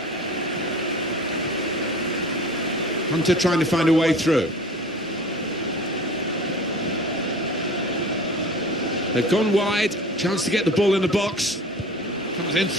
Hunter trying to find a way through. They've gone wide. Chance to get the ball in the box. Comes in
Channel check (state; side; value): normal; both; correlation 0.41